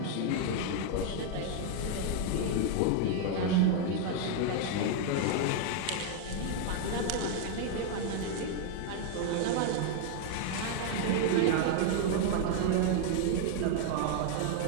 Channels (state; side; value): different; both; correlation 0.00